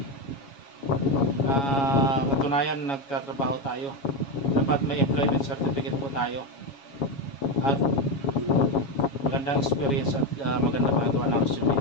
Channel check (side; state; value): right; late; 7.2 ms